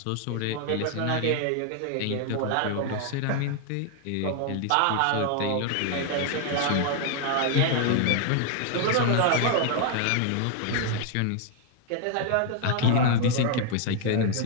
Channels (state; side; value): different; both; correlation 0.00